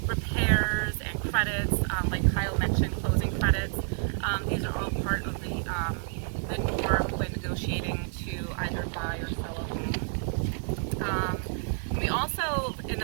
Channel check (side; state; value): left; silent; digital silence